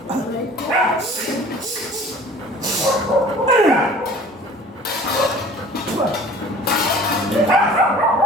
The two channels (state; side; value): normal; both; correlation 0.46